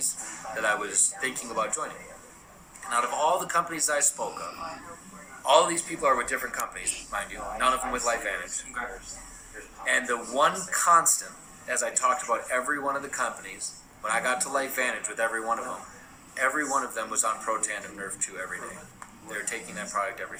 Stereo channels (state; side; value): identical; both; correlation 1.00